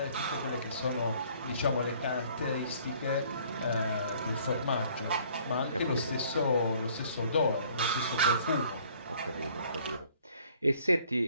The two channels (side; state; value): both; inverted; correlation -0.58